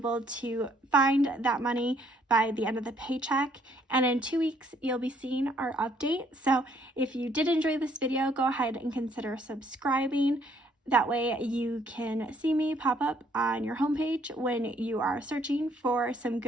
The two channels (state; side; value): normal; both; correlation 0.66